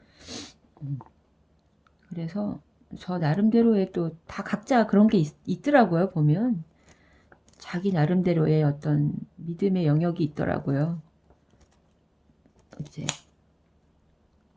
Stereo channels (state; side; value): identical; both; correlation 1.00